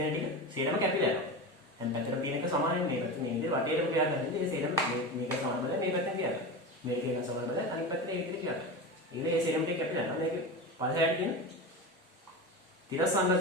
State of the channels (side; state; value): both; normal; correlation 0.24